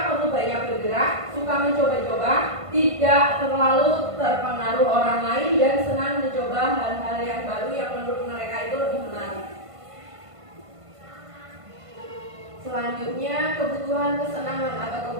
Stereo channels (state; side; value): late; left; 1.5 ms